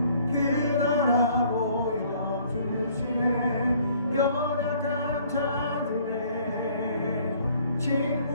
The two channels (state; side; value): inverted; both; correlation -0.59